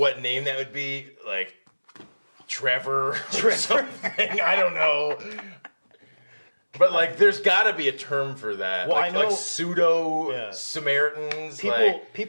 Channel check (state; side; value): inverted; both; correlation -1.00